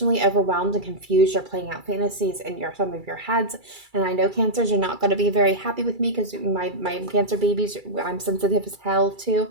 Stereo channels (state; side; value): late; left; 2.3 ms